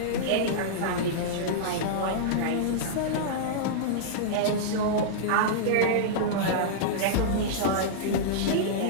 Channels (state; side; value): different; both; correlation -0.03